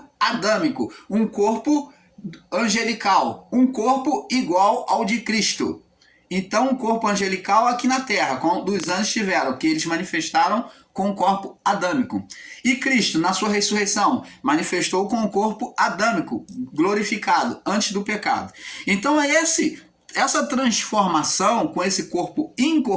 adâmico, um corpo angelical, um corpo igual ao de Cristo. Então, um corpo angelical aqui na terra, como os anjos tiveram, que eles manifestaram com o corpo adâmico. E Cristo, na sua ressurreição, manifestou com o corpo adâmico, glorificado, antes do pecado. Então, essa transformação com esse corpo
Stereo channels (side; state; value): both; identical; correlation 1.00